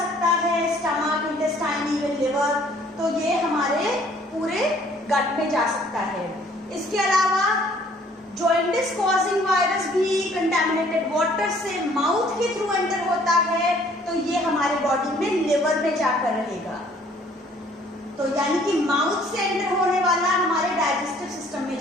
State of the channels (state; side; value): normal; both; correlation 0.58